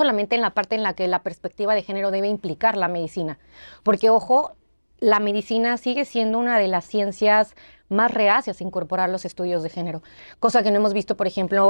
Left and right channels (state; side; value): inverted; both; correlation -1.00